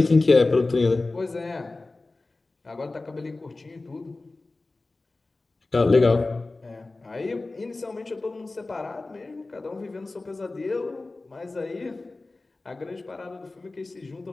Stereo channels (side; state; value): right; quieter; 3.3 dB